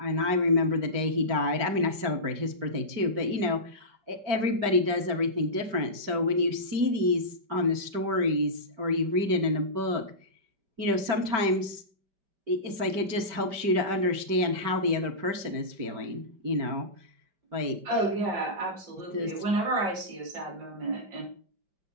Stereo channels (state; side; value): late; left; 5.1 ms